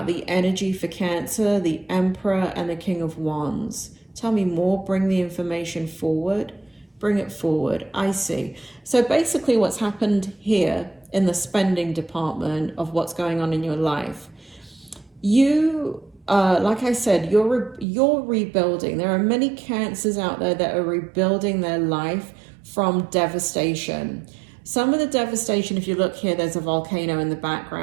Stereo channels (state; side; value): drops out; left; at 17.9 s